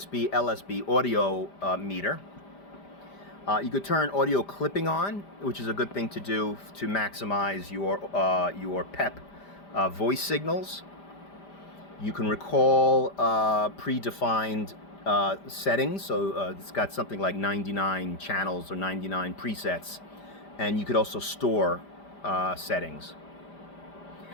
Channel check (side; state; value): right; late; 5.0 ms